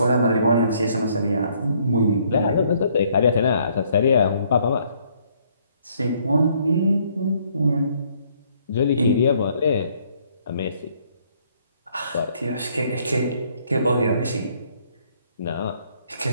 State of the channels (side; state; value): both; inverted; correlation -0.66